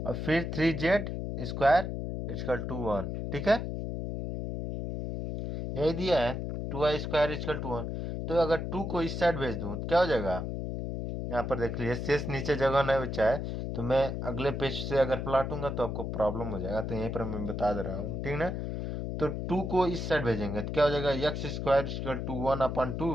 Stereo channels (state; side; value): noise; left; hum, 4 dB below the sound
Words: और फिर 3z स्क्वायर इजकल टू 1। ठीक है, यही दिया है 2y स्क्वायर इजकल टू 1, तो अगर 2 को इस साइड भेज दूँ तो क्या हो जाएगा, यहाँ पर देख लीजिए शेष नीचे जगह नहीं बचा है, तो मैं अगले पेज से अगर पलटूंगा तो आपको प्रॉब्लम हो जाएगा, तो यहीं पर मैं बता दे रहा हूँ। ठीक ना, तो 2 को इस साइड भेजेंगे तो क्या हो जाएगा X square equal to